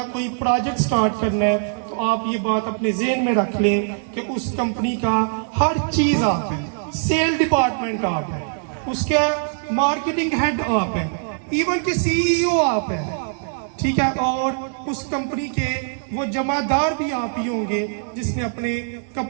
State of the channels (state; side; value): silent; left; digital silence